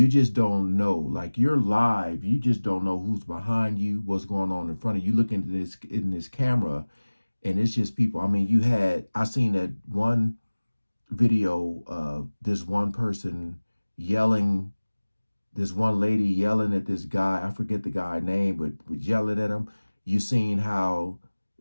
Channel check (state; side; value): inverted; both; correlation -1.00